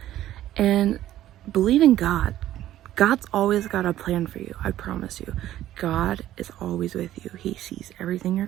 and believe in God. God's always got a plan for you. I promise you. God is always with you. He sees everything you're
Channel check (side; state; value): left; quieter; 13.2 dB